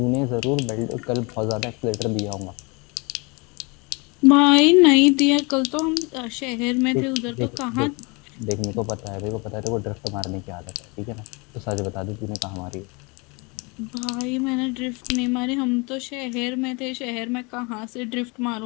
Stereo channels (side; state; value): right; quieter; 28.9 dB